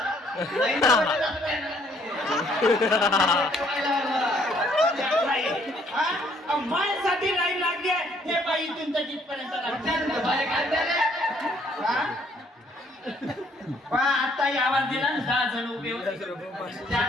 माझ्यासाठी लाईन लागली आहे हे बाई इथून तर तिथपर्यंत आता आवाज दिला ना 10 जण उभे होते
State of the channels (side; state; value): both; normal; correlation 0.65